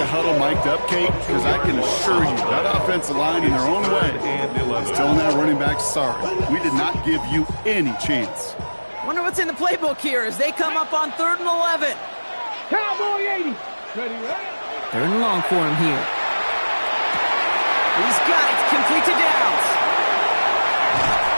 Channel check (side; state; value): both; inverted; correlation -1.00